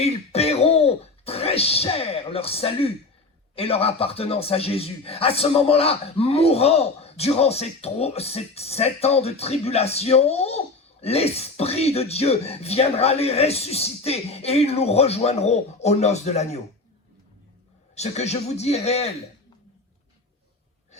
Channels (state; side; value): quieter; right; 3.4 dB